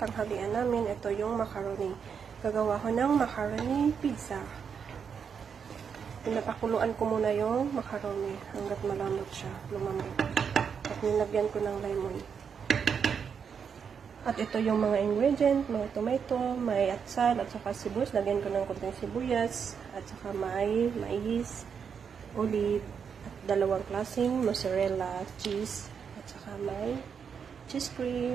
tanghalian namin. Ito yung macaroni. Gagawa ko ng macaroni pizza. Pinapakuluan ko muna yung macaroni hanggat malambot siya, lumambot. At nilagyan ko ng lemon. At ito yung mga ingredient, may tomato, may atsal at saka sibuyas. Lagyan ko ng konting sibuyas at saka may mais, olive, at dalawang klaseng mozzarella cheese at saka may cheese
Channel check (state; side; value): quieter; left; 6.8 dB